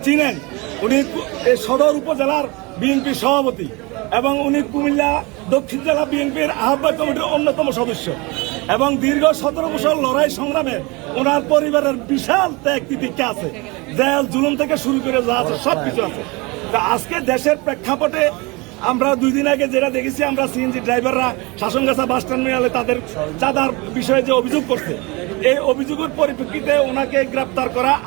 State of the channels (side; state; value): left; quieter; 26.0 dB